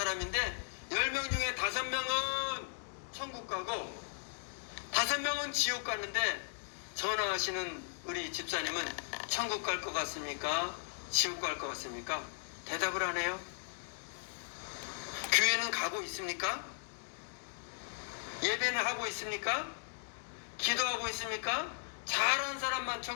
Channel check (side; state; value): right; silent; digital silence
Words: 10명 중에 5명은 천국 가고 5명은 지옥 갔는데, 전화하시는 우리 집사님은 천국 갈 것 같습니까? 지옥 갈 것 같습니까? 대답을 안 해요. 교회는 가고 있습니까? 예배는 하고 있습니까? 기도하고 있습니까? 잘한 사람만